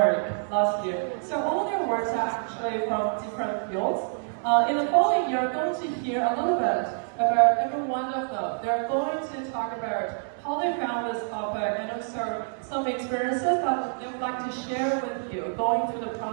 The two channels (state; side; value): silent; left; 60 dB below the other